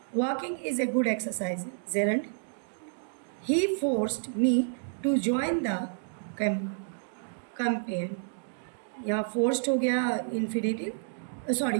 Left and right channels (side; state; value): left; silent; digital silence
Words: Walking is a good exercise, gerund. He forced me to join the campaign, यहाँ फोर्स्ड हो गया इन्फिनेटिव,